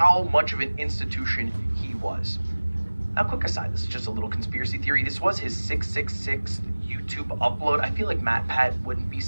much of an institution he was. Now, quick aside, this is just a little conspiracy theory. This was his 666th YouTube upload. I feel like MatPat wouldn't be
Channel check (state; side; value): inverted; both; correlation -1.00